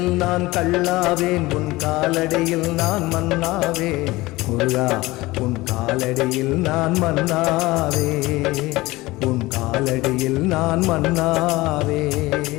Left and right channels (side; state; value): right; quieter; 20.0 dB